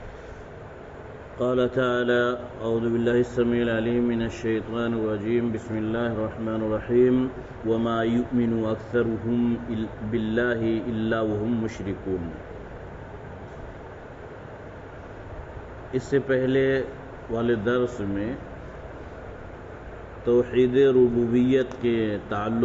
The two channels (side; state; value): both; identical; correlation 1.00